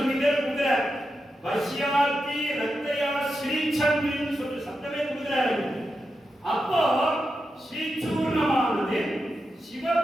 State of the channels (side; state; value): both; normal; correlation 0.88